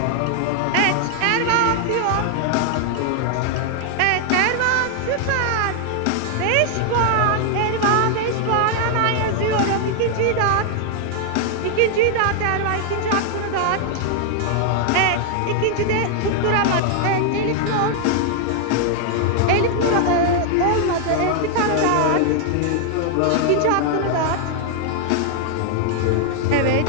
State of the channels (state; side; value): different; both; correlation 0.00